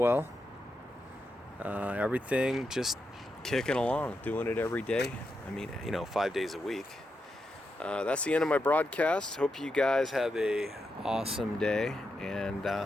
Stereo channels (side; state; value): both; normal; correlation 0.86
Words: Everything just kicking along, doing it every day. I mean, 5 days a week. That's the end of my broadcast. Hope you guys have a awesome day, and